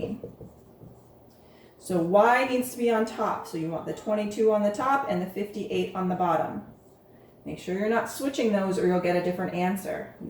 So y needs to be on top. So you want the 22 on the top and the 58 on the bottom. Make sure you're not switching those or you'll get a different answer.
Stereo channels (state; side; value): identical; both; correlation 1.00